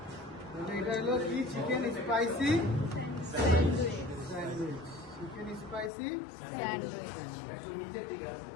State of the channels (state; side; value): drops out; right; at 5.9 s